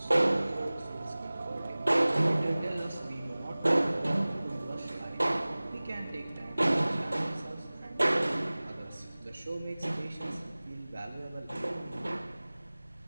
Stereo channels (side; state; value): both; inverted; correlation -0.99